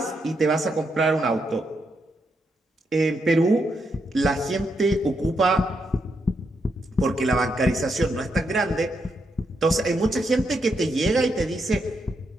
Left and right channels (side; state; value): both; normal; correlation 0.81